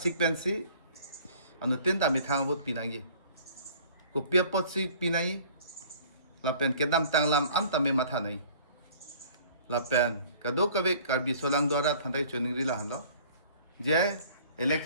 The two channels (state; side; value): inverted; both; correlation -0.51